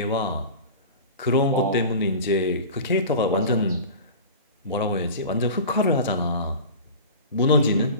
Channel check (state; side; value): inverted; both; correlation -0.35